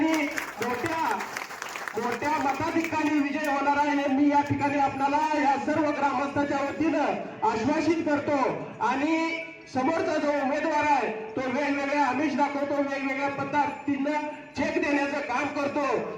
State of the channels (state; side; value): identical; both; correlation 1.00